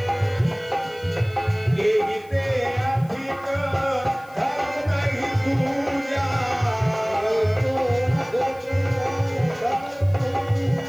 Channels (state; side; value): noise; left; hiss, 28 dB below the sound